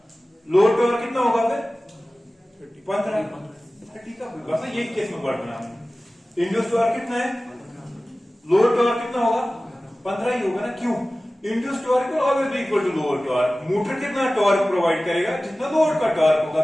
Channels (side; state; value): both; normal; correlation 0.97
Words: लोड टॉर्क कितना होगा फिर 15 30 का बस ये केस में वर्ड बना इंड्यूस्ड टॉर्क कितना है लोड टॉर्क कितना होगा 15 ही होगा ना क्यों induced torque will always be equal to load torque motor कितना टॉर्क प्रोवाइड करेगा जितना लोड का टॉर्क होगा